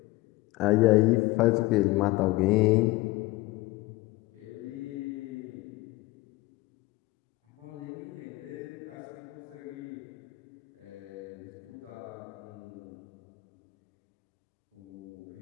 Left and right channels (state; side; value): quieter; right; 20.2 dB